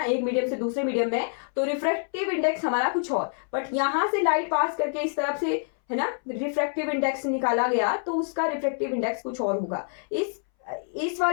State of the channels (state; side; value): silent; right; 61 dB below the other